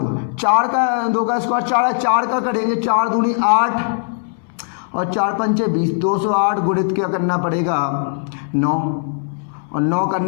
4 का 2 का स्क्वायर 4 है, 4 का करेंगे 4 दूनी 8 और 4 पंचे 20, 208 गुणित क्या करना पड़ेगा 9, और 9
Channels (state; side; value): silent; right; 65 dB below the other